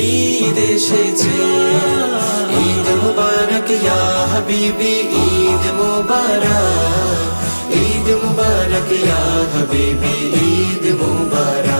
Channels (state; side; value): inverted; both; correlation -1.00